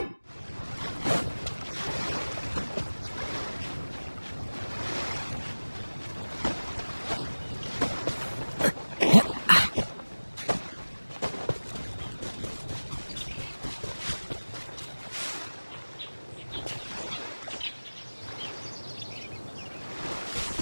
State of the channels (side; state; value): both; inverted; correlation -1.00